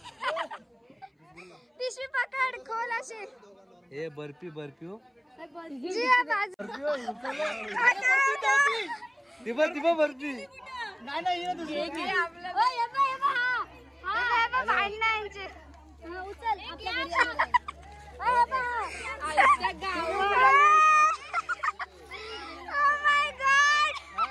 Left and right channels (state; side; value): identical; both; correlation 1.00